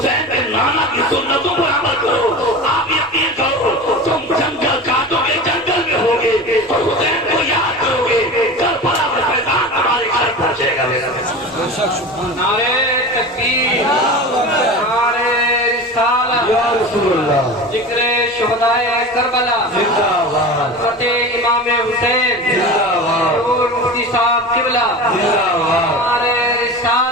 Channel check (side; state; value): both; normal; correlation 0.31